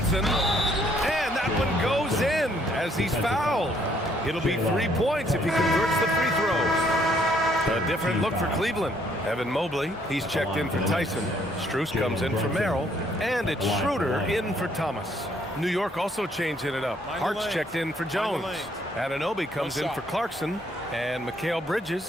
And that one goes in as he's fouled. It'll be 3 points if he converts the free throws. A different look for Cleveland. Evan Mobley, he's checked in for Tyson. Strus comes in for Merrill. And it's Schroeder in for Thomas. New York also changing it up. Hart's checked in for Jones. Anunoby comes in for Clarkson. And Mikal Bridges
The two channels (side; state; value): both; normal; correlation 0.67